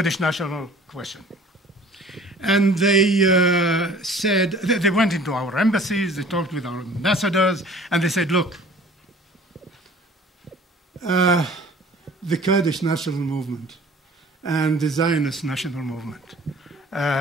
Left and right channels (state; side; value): normal; both; correlation 0.49